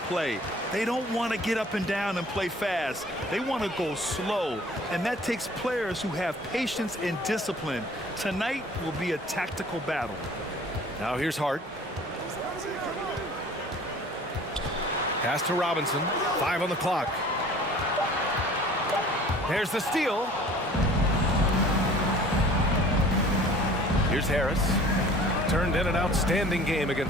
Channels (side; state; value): both; normal; correlation 0.49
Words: They don't want to get up and down and play fast. They want to go slow, and that takes players who have patience and discipline. Tonight will be a tactical battle. Now here's Hart. Pass to Robinson. 5 on the clock. There's the steal. Here's Harris. Turned in an outstanding game